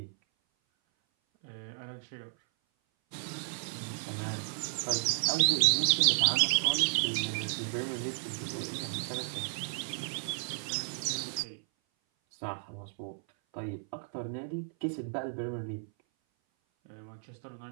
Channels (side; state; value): left; silent; 56 dB below the other